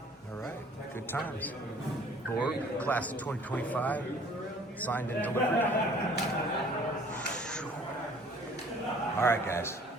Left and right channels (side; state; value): both; normal; correlation 0.53